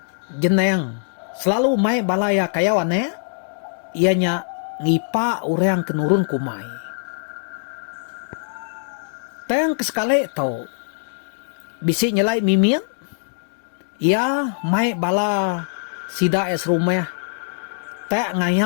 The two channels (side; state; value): right; silent; digital silence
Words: Jeneng. Selalu mai balaya kayawane. Ianya ngipa urang kenurun kumai. Teng kesekali to. Bisi nyelai mimin. Ya mai bala sida es rumah. Tak